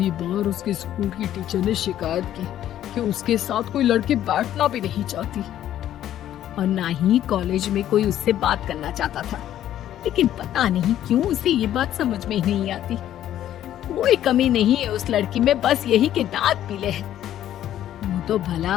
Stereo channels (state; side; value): quieter; right; 11.8 dB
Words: बार उसके स्कूल की टीचर ने शिकायत की कि उसके साथ कोई लड़की बैठना भी नहीं चाहती, और ना ही कॉलेज में कोई उससे बात करना चाहता था। लेकिन पता नहीं क्यों उसे ये बात समझ में ही नहीं आती। कोई कमी नहीं है उस लड़की में, बस यही कि दांत पीले हैं। वो तो भला